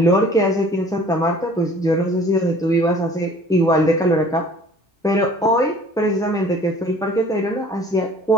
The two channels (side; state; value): both; normal; correlation 0.50